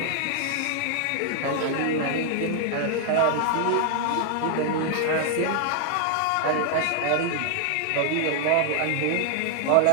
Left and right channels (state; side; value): different; both; correlation 0.00